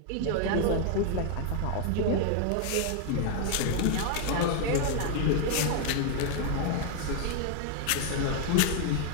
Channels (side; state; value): both; different; correlation 0.00